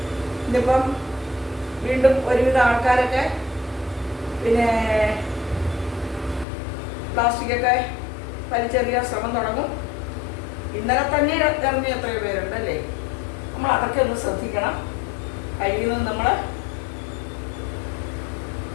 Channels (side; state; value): right; drops out; at 6.5 s